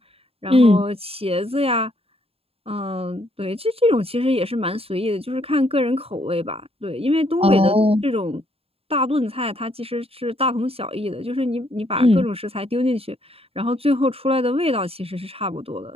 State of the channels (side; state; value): left; late; 0.28 ms